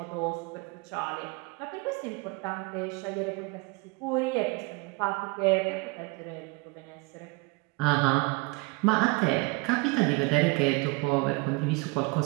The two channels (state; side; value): quieter; left; 27.0 dB